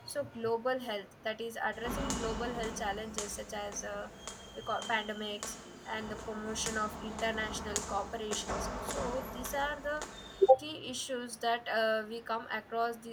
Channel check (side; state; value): both; identical; correlation 1.00